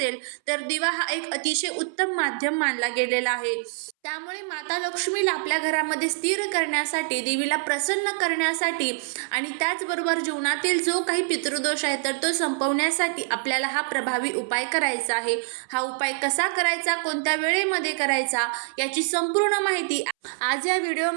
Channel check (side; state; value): left; silent; 61 dB below the other